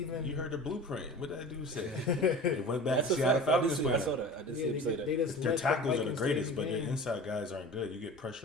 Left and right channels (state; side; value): normal; both; correlation 0.37